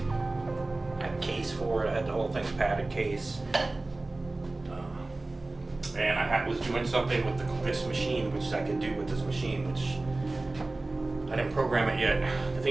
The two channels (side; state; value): left; quieter; 3.0 dB